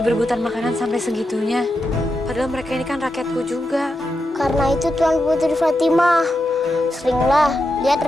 berebutan makanan sampai segitunya. Padahal mereka ini kan rakyatku juga. Karena itu Tuan Putri Fatimah, seringlah lihat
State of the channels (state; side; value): normal; both; correlation 0.87